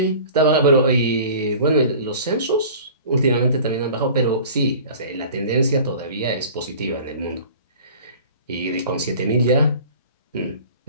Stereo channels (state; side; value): inverted; both; correlation -0.43